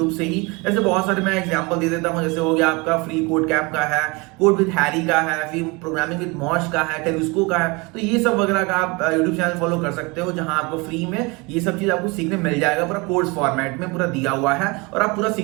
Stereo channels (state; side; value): quieter; left; 26.8 dB